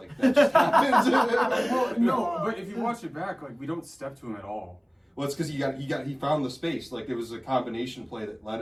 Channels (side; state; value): both; identical; correlation 1.00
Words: that just happens. Well, no, but if you watch it back, like we don't step to him at all. Well, it's because he found the space. Like it was a combination play that led